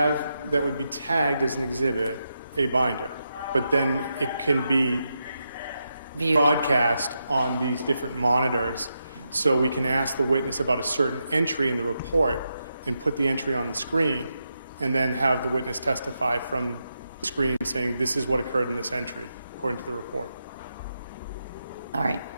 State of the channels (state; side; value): inverted; both; correlation -0.85